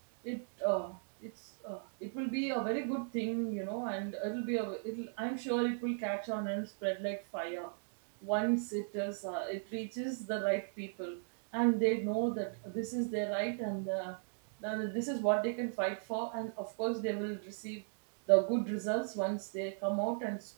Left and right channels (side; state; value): left; silent; digital silence